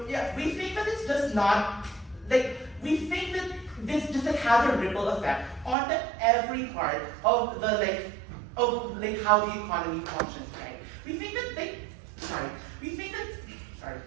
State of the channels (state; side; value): drops out; left; at 5.8 s